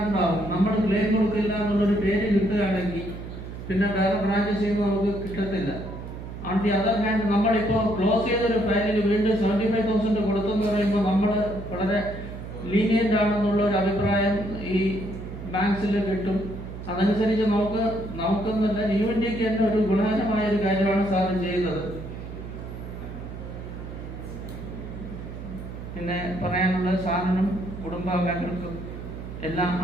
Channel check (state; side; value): noise; right; hum, 10 dB below the sound